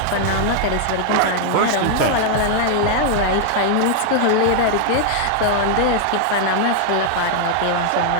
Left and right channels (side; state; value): both; different; correlation 0.00